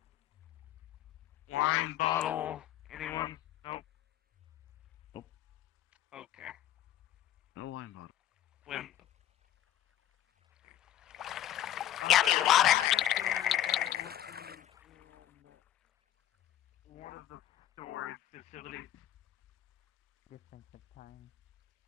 Wine bottle. Anyone? Nope. Nope. Okay. No wine bottle. When? Yummy water. One of the storage facilities. Difference of time.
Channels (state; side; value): quieter; right; 12.2 dB